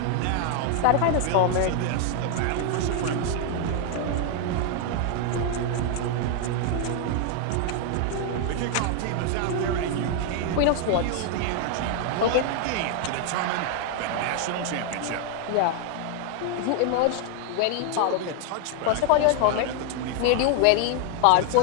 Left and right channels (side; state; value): both; different; correlation 0.00